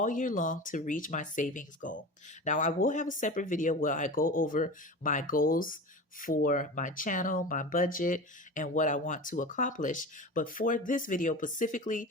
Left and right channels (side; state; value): both; normal; correlation 0.31